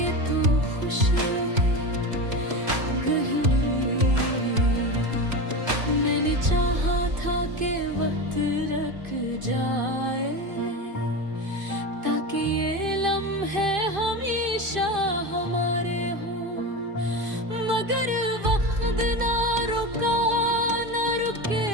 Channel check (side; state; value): left; late; 2.5 ms